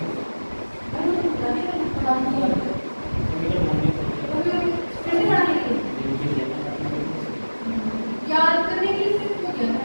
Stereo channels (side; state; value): both; inverted; correlation -1.00